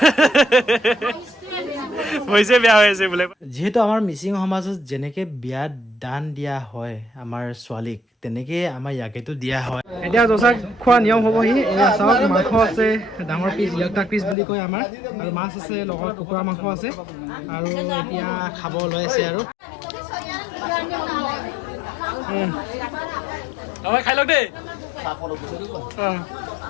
হৈছে বেয়া হৈ আছে বোলে। যিহেতু আমাৰ মিচিং সমাজত যেনেকে বিয়াত দান দিয়া হয় আমাৰ ছোৱালীক, তেনেকে আমাৰ ইয়াকেতো দিয়া হয়। এতিয়া জচাক খোৱা নিয়ম হ'বহি। এয়া চাওক, মাংস আছে ডাঙৰ পিচ, ইয়াক পিচ বুলি কয় আমাৰ, আৰু মাছ আছে লগত কুকুৰা মাংস আছে, আৰু এতিয়া খাব লৈ আছে আৰু হয় খাই লওক দেই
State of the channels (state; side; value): drops out; right; at 14.4 s